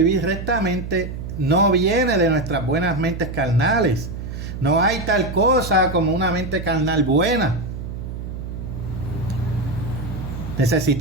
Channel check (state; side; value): noise; right; hum, 7 dB below the sound